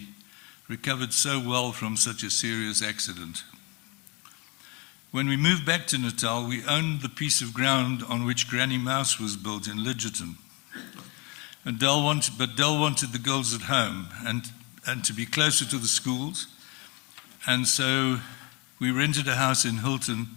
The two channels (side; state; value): right; quieter; 28.6 dB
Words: recovered so well from such a serious accident. When we moved back to Natal, we owned the piece of ground on which Granny Mouse was built in Lidgerton. But Del wanted the girls at home and to be closer to the schools. And so we rented a house in Hilton